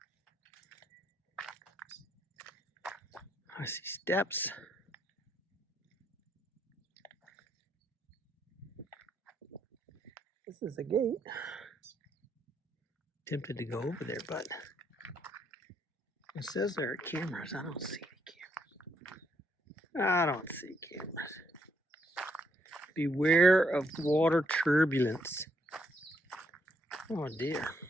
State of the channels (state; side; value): normal; both; correlation 0.74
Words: I see steps. This is a gate. Tempted to go over there, but it says there are cameras. I don't see any cameras. I don't see cameras. Beware of water turbulence. Oh dear.